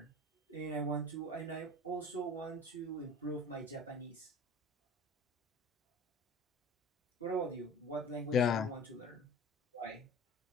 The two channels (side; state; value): both; normal; correlation 0.40